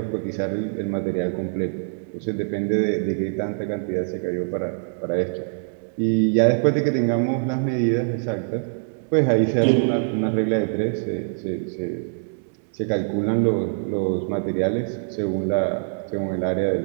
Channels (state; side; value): silent; left; digital silence